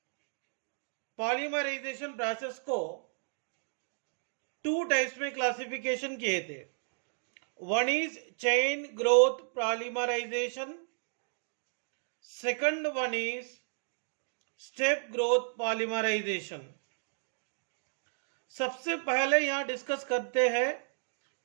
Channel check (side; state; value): left; silent; digital silence